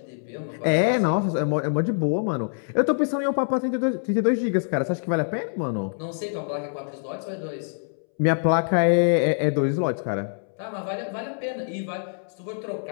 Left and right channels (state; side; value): silent; right; 62 dB below the other